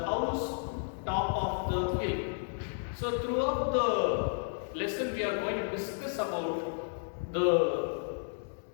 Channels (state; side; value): silent; right; digital silence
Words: house top of the hill. So throughout the lesson we are going to discuss about the